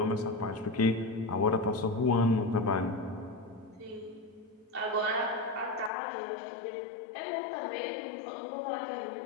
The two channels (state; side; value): drops out; right; at 5.9 s